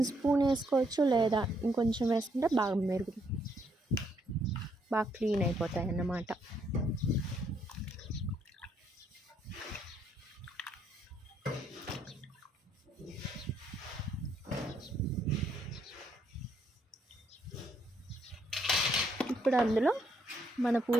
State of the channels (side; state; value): both; normal; correlation 0.72